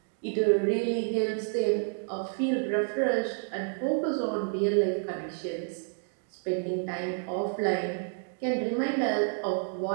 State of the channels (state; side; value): silent; left; 58 dB below the other